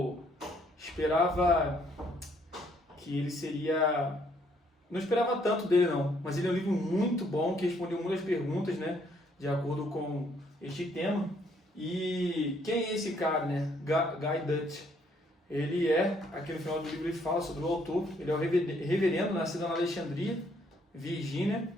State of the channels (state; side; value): normal; both; correlation 0.68